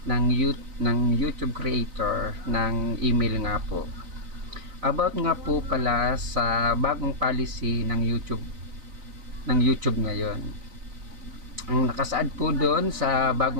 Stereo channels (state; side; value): late; left; 4.0 ms